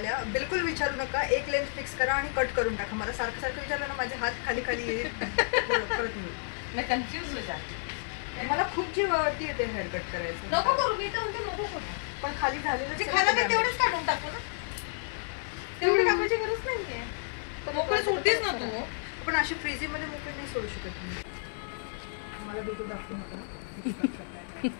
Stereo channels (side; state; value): right; silent; digital silence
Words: बिलकुल विचारू नका. एक लेन्स फिक्स करा आणि कट करून टाका. मला सारखं सारखं विचारलं ना माझे हात खाली खाली येईल परत येईल. मैं कन्फ्यूज हो जाते. मला खूप जीवावरती येते हेअर कट करायचं. नको करू, मी तर म्हणते नको करू. पण खाली झालेलं जे खाला मी तेवढंच काढून टाकू ना. तेवढी कामाची गरज नाहीये. मोकळी सोडतेच ना तू. पण अशी फ्रीझिंग मध्ये मोकळी नाही सोडू शकत मी. मला बिलकुल दाखवू नका.